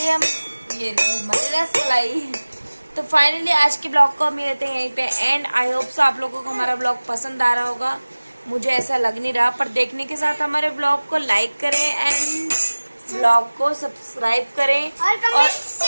हम ये रहे हमारी रसमलाई। तो फाइनली आज के ब्लॉग को हम लेते हैं यहीं पे एंड। आई होप सो आप लोगों को हमारा ब्लॉग पसंद आ रहा होगा, मुझे ऐसा लग नहीं रहा, पर देखने के साथ हमारे ब्लॉग को लाइक करें एंड ब्लॉग को सब्सक्राइब करें और कमेंट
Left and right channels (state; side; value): inverted; both; correlation -1.00